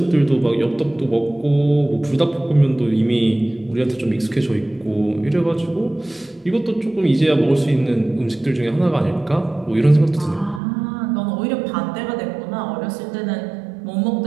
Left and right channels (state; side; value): drops out; left; at 10.6 s